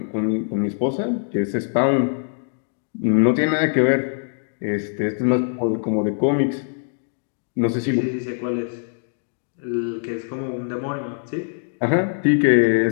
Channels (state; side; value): silent; right; digital silence